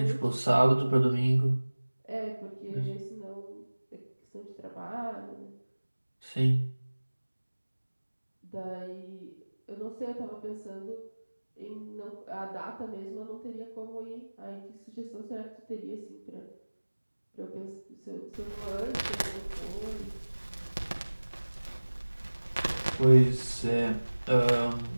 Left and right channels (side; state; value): both; inverted; correlation -1.00